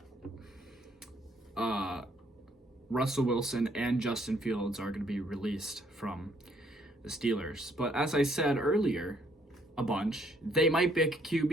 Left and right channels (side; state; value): both; normal; correlation 0.67